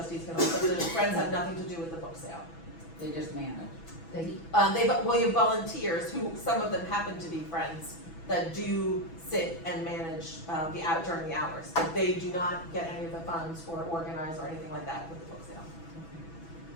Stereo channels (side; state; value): right; late; 6.1 ms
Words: can, also the Friends have nothing to do with the book sale. They just manage. You have volunteers who, some of them happen to be friends, that do sit and manage during the hours. But they do not get any of the funds or organize or anything like that with the book sale.